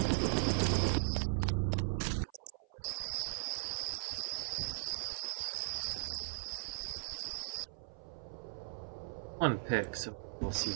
One pick, so we'll see.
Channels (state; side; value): silent; left; 52 dB below the other